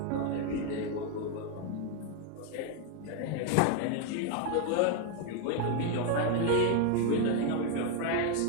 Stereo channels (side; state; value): both; different; correlation 0.01